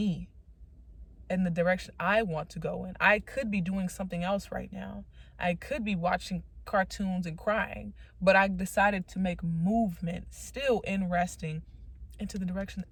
in the direction I want to go in. I could be doing something else right now. I could be watching cartoons and crying, but I decided to make movement, still in resting, into the direction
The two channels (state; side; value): identical; both; correlation 1.00